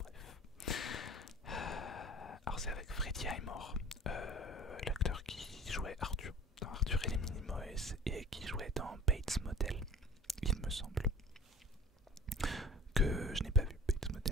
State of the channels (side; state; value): both; normal; correlation 0.43